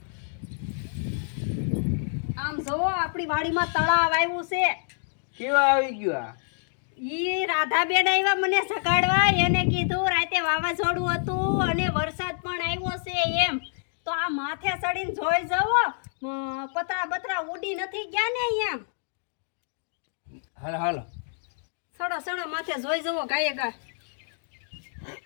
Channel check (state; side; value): silent; right; digital silence